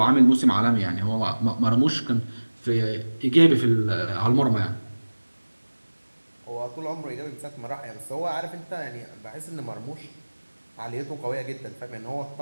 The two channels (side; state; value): both; inverted; correlation -1.00